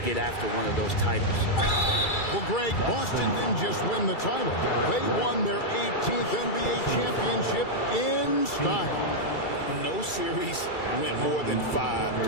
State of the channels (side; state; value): right; late; 2.3 ms